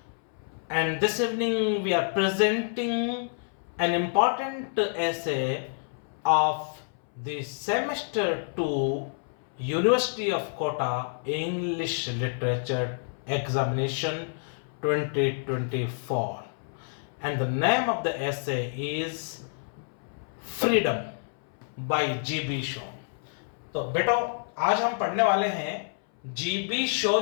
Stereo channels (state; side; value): silent; right; 59 dB below the other